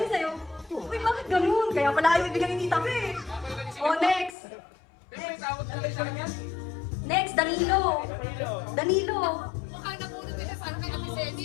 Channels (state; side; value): drops out; right; at 4.4 s